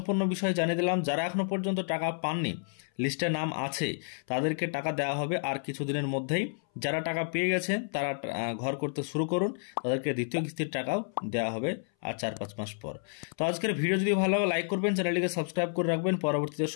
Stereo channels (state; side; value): silent; right; 58 dB below the other